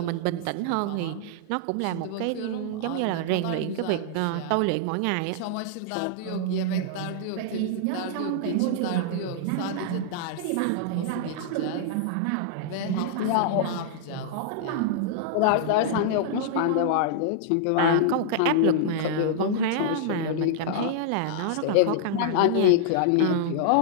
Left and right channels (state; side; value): different; both; correlation -0.01